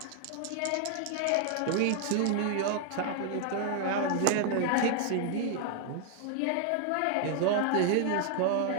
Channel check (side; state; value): both; different; correlation 0.00